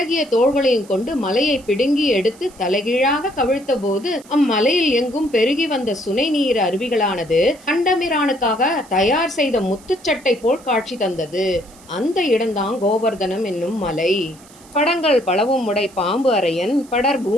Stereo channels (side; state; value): right; noise; hiss, 24 dB below the sound